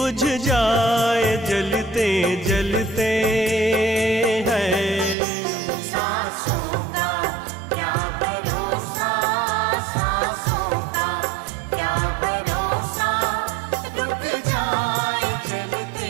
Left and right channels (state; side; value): drops out; left; at 5.2 s